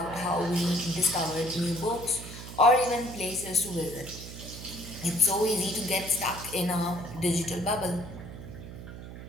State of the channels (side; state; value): right; noise; hum, 12 dB below the sound